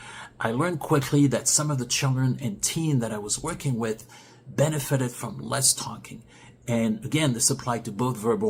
I learned quickly that some of the children and teen that I was working with benefited from less talking. And again, this applied to both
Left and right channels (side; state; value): both; identical; correlation 1.00